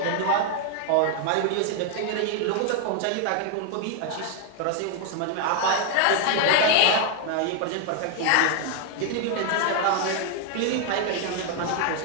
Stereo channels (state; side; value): different; both; correlation 0.00